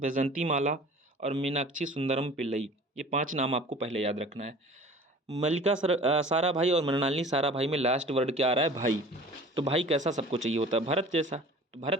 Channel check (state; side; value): normal; both; correlation 0.44